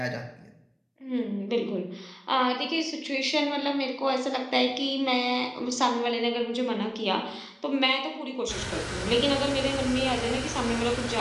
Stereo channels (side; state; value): both; identical; correlation 1.00